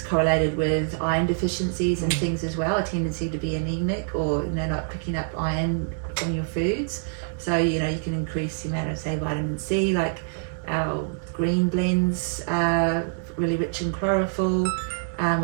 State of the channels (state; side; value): silent; left; digital silence